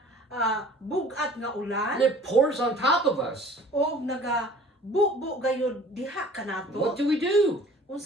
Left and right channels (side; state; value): both; normal; correlation 0.49